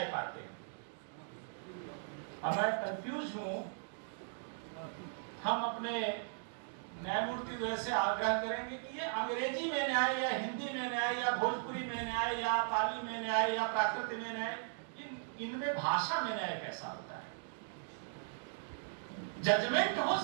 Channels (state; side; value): silent; left; digital silence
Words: पाते हैं। अब मैं कंफ्यूज हूं, हम अपने न्यायमूर्ति से आग्रह करेंगे कि ये अंग्रेजी में न्याय या हिंदी में न्याय या भोजपुरी में न्याय या पाली में न्याय या प्राकृत में न्याय, इनमें भाषा में न्याय कैसा होता है? जजमेंट हो